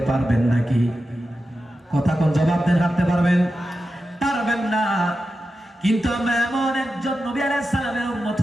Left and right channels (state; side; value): normal; both; correlation 0.91